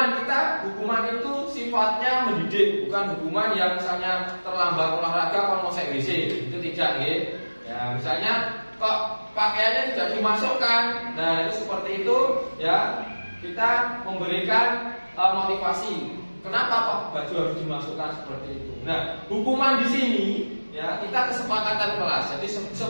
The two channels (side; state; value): both; inverted; correlation -1.00